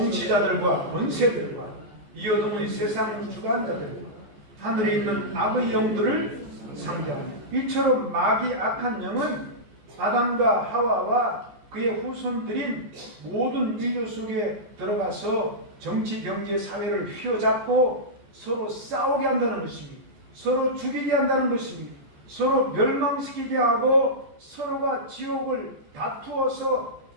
권세들과 이 어둠의 세상 주관자들 하늘에 있는 악의 영들을 상대합니다. 이처럼 마귀 악한 영은 아담과 하와와 그의 후손들인 모든 인류 속에 들어가서 정치, 경제, 사회를 휘어잡고 서로 싸우게 한다는 것입니다. 서로 죽이게 한다는 것입니다. 서로 멸망시키게 하고 서로가 지옥을 다투어서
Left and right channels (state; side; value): late; left; 14 ms